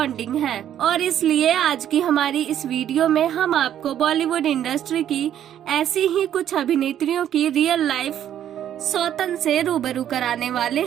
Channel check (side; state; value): left; quieter; 10.6 dB